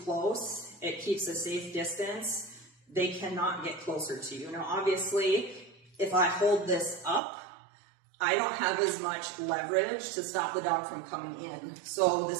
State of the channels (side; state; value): left; drops out; at 7.2 s